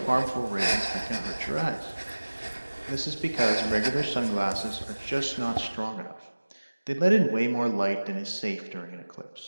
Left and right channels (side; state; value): both; inverted; correlation -1.00